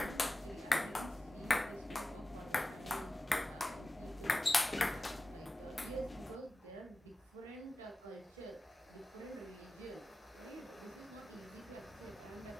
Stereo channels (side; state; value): both; normal; correlation 0.95